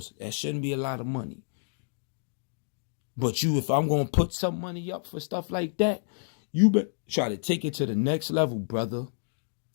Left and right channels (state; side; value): silent; right; digital silence